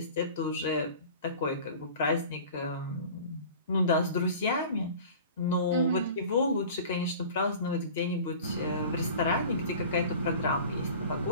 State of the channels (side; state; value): both; inverted; correlation -0.41